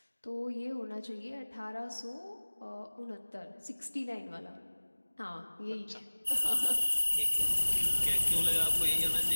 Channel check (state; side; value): inverted; both; correlation -1.00